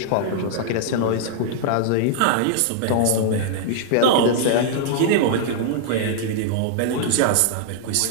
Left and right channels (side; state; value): both; different; correlation -0.01